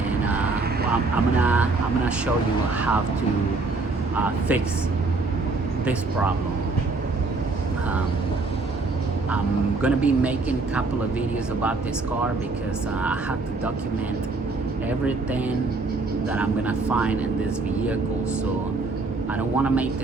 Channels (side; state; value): left; quieter; 3.7 dB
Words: well, I'm gonna show you how to fix this problem. I'm gonna be making a couple of videos about this car because I have to document everything that I'm gonna find in this vehicle. So I don't want to make